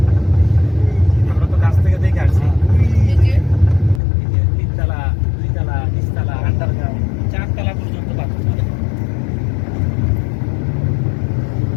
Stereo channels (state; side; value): drops out; right; at 4.0 s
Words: আমরা তো গাছ থেকে দেখে আসছি। এই যে এই যে 3 তলা 2 তলা নিচতলা আন্ডারগ্রাউন্ড 4 তলা পর্যন্ত পাথর মারে।